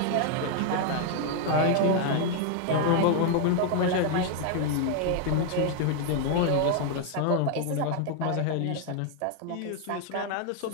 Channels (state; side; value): different; both; correlation 0.00